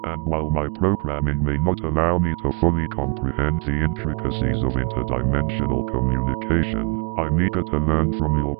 And while my programming may not allow me to fully comprehend the intricacies of interdimensional communication, I'm eager to learn from your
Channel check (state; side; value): quieter; left; 32.7 dB